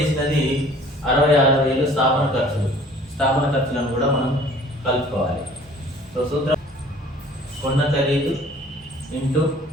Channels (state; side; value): normal; both; correlation 0.52